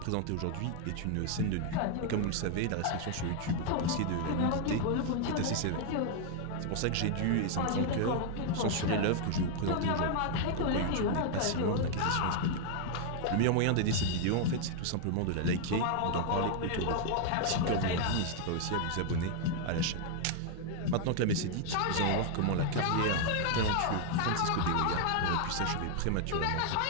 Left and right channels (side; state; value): both; different; correlation 0.00